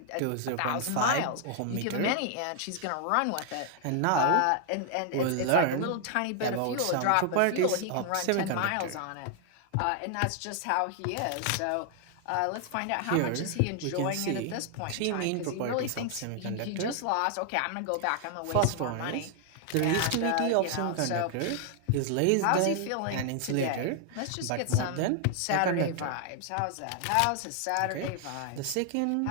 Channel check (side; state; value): both; different; correlation 0.00